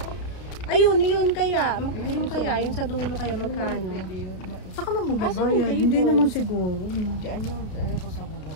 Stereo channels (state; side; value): late; right; 32 ms